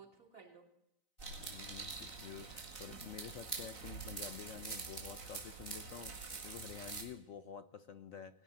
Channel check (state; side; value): late; right; 3.9 ms